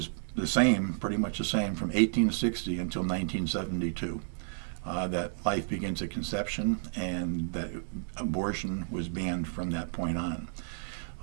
the same, pretty much the same, from 1860 until 1972. That life begins at conception, and that abortion was banned from that point on.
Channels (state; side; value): silent; left; digital silence